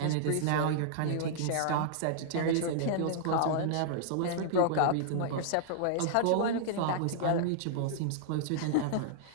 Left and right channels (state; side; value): different; both; correlation -0.01